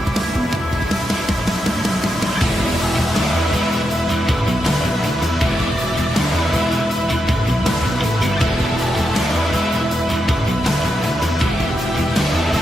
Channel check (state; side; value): normal; both; correlation 0.85